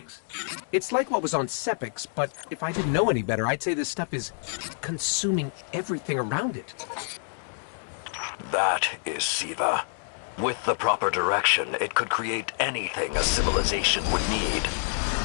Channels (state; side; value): silent; right; digital silence